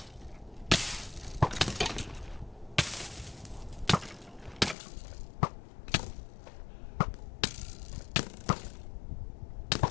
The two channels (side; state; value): right; drops out; at 4.8 s